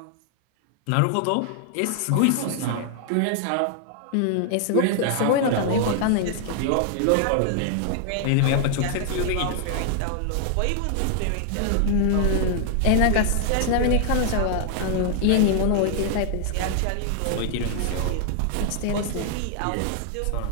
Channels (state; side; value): different; both; correlation 0.00